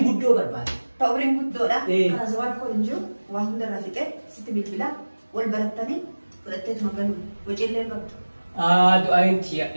guddoo barbaada. Ta umriin guddoodha. Kana zawaan koo hin jiru waan hundarraa fixee sitti bilbilaa wal barattanii fudhatteetuma galuu waciillee qabdu. Du'aayin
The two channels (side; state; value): both; inverted; correlation -1.00